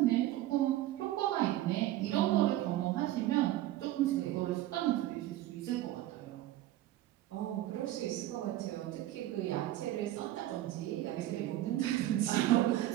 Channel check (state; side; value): quieter; left; 14.7 dB